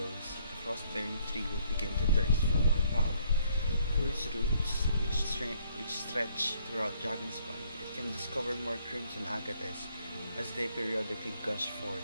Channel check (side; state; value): both; inverted; correlation -0.65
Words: the frost-bearing tree will begin to thirst for more power. Through its roots, which stretch throughout Dragonspine, it can discover more crimson agates as they periodically gush